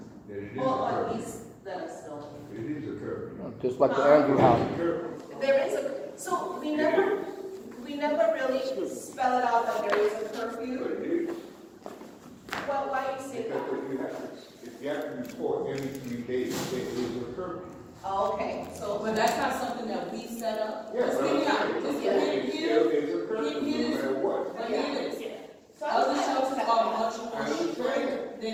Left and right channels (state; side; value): identical; both; correlation 1.00